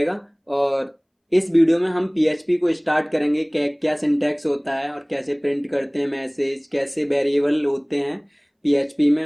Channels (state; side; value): identical; both; correlation 1.00